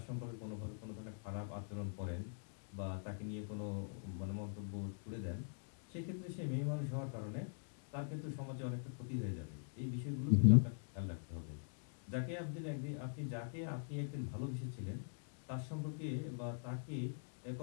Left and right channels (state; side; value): silent; right; digital silence